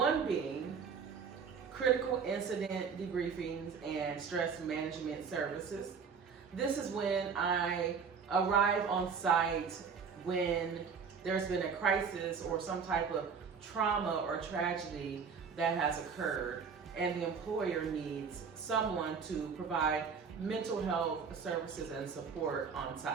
being critical incident debriefings and stress management services. This is when I arrive on site when there's been a crisis or some type of trauma or tragedy that has occurred, and the employer needs someone to provide mental health services and support on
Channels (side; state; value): left; quieter; 6.0 dB